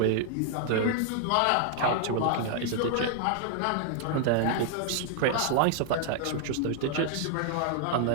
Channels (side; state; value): both; different; correlation 0.00